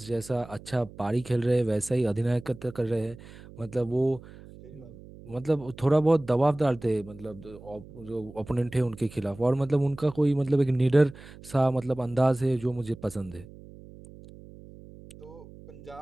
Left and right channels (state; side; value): noise; right; hum, 18 dB below the sound